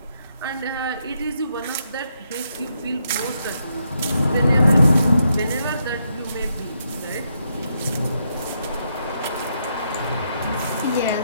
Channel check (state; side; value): inverted; both; correlation -0.79